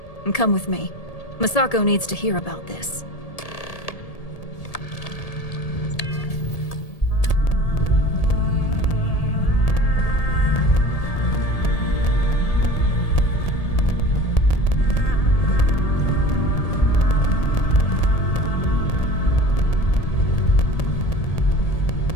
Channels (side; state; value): right; late; 1.8 ms